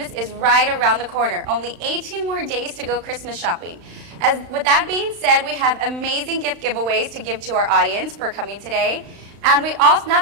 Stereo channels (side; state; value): left; late; 35 ms